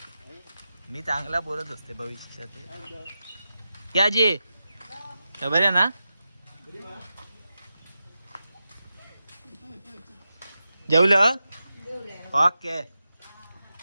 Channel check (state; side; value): inverted; both; correlation -0.91